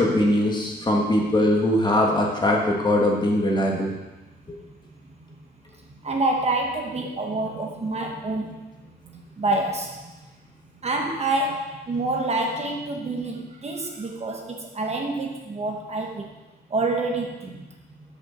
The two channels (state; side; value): normal; both; correlation 0.52